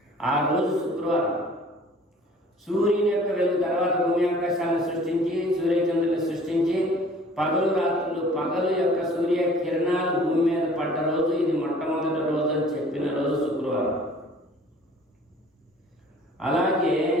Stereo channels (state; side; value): normal; both; correlation 0.51